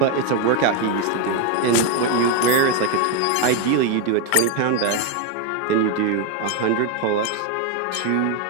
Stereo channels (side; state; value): both; different; correlation 0.02